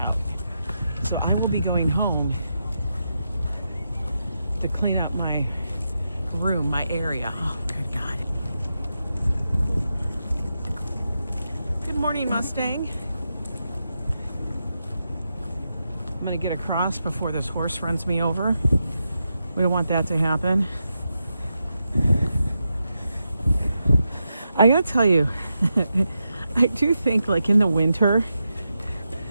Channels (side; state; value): both; inverted; correlation -0.87